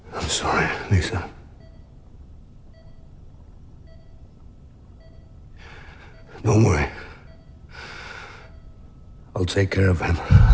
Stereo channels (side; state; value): both; identical; correlation 1.00